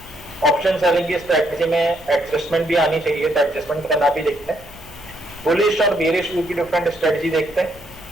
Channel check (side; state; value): right; noise; hum, 27 dB below the sound